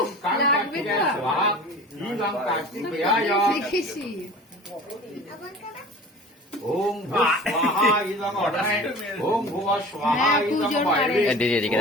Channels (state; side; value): normal; both; correlation 0.40